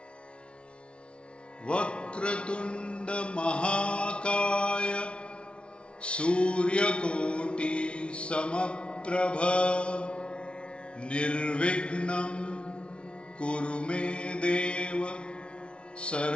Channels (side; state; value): right; late; 0.058 ms